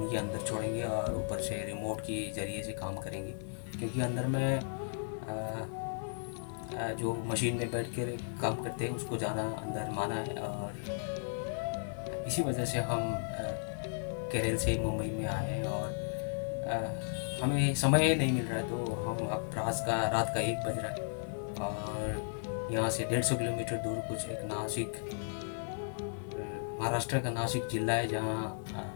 के अंदर छोड़ेंगे और ऊपर से रिमोट के ज़रिए से काम करेंगे, क्योंकि अंदर में जो मशीन में बैठ कर काम करते हैं उसको जाना अंदर माना है। और इसी वजह से हम केरल से मुंबई में आए हैं। और अ, हमें समय नहीं मिल रहा है, तो हम अब रात का 1 बज रहा है। और यहाँ से 150 किलोमीटर दूर कुछ एक नासिक, महाराष्ट्र का नासिक जिला है, जहाँ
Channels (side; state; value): right; silent; digital silence